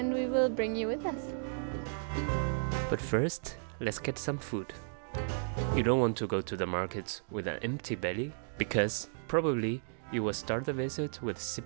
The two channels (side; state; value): left; silent; digital silence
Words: we will bring you with us. But first, let's get some food. You don't want to go to the markets with an empty belly, because probably you will start the visit with